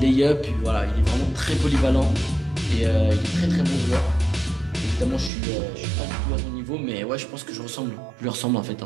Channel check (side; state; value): left; drops out; at 5.3 s